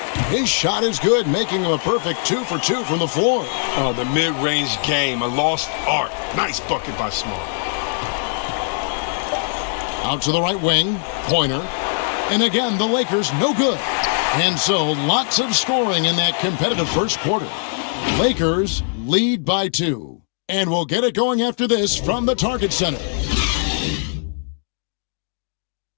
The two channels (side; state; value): right; silent; digital silence